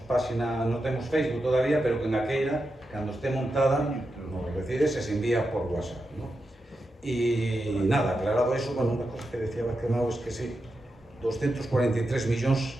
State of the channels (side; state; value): both; normal; correlation 0.88